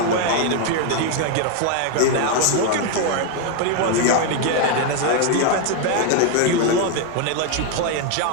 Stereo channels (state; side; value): different; both; correlation 0.01